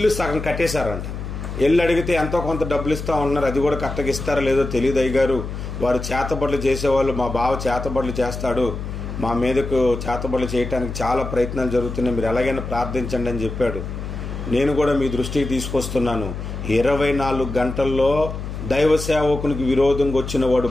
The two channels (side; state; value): left; noise; hum, 7 dB below the sound